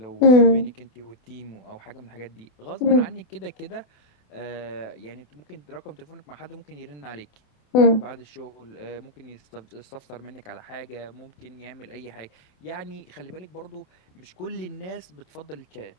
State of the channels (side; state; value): right; late; 27 ms